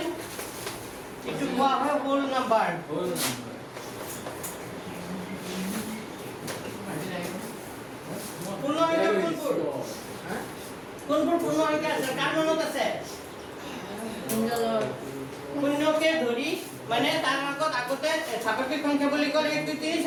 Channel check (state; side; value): identical; both; correlation 1.00